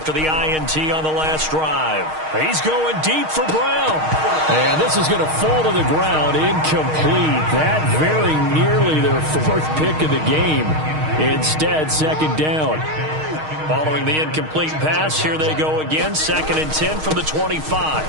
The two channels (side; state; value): left; late; 6.4 ms